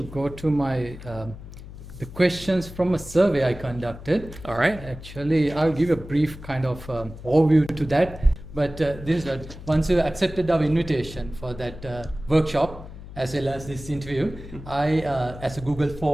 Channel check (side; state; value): left; noise; hum, 14 dB below the sound